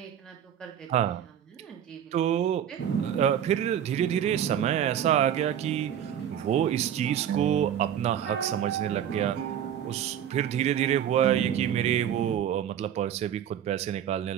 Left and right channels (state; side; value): quieter; left; 9.8 dB